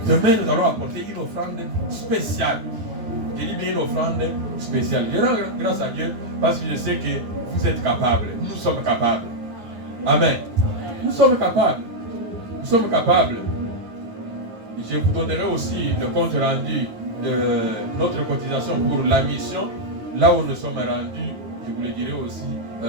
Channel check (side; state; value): left; late; 9.6 ms